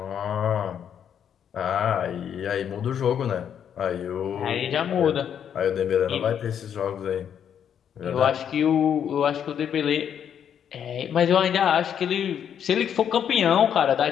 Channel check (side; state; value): right; quieter; 8.7 dB